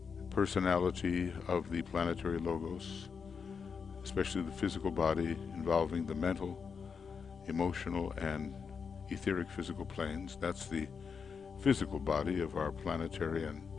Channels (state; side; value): quieter; right; 6.0 dB